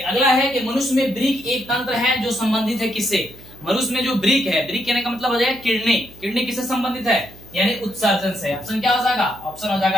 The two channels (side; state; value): right; noise; hum, 21 dB below the sound